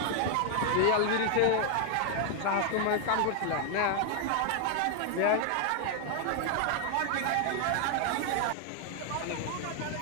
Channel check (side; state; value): both; different; correlation 0.00